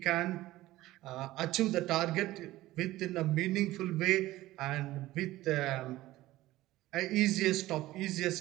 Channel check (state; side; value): quieter; left; 16.6 dB